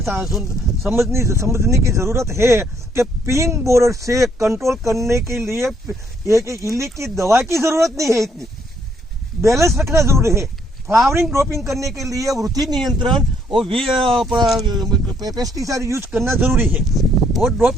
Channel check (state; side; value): normal; both; correlation 0.69